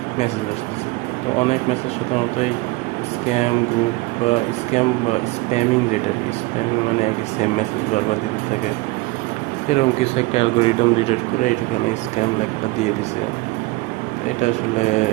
মেসেজ আসতেছে। তো অনেক মেসেজ সাধারণত এই স্ক্যাম গ্রুপ বা স্প্যামিং, যেটা আর কি, স্প্যামিং মানে একই সেম মেসেজ বারবার দিতে থাকে, এরকম কিছু একটা অ্যালগোরিদম ডিটেক্ট করে এটাখানে স্ক্যাম লেখাটা দিয়ে দিছে। তো এটা আসলে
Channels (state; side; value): quieter; left; 22.0 dB